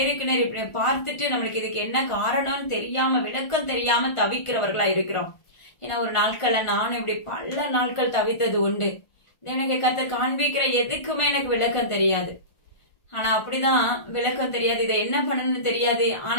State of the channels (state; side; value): late; right; 1.4 ms